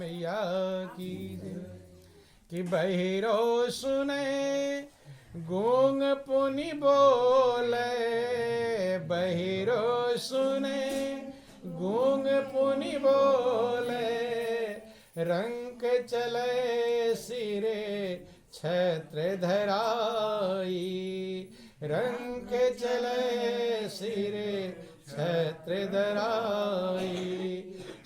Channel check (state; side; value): identical; both; correlation 1.00